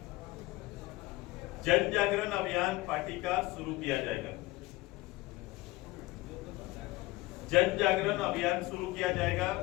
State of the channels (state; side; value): quieter; right; 19.9 dB